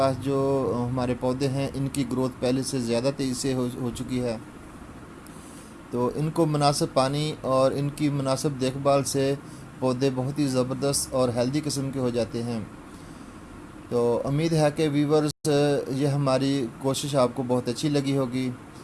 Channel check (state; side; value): identical; both; correlation 1.00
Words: जो हमारे पौधे हैं इनकी ग्रोथ पहले से ज़्यादा तेज़ी से हो चुकी है। तो इनको मुनासिब पानी और इनकी मुनासिब देखभाल से पौधे बहुत ही ज़बरदस्त और हेल्दी किस्म के हो जाते हैं। तो उम्मीद है कि व्यूवर्स ये हमारी कोशिश आपको बहुत अच्छी लगी होगी।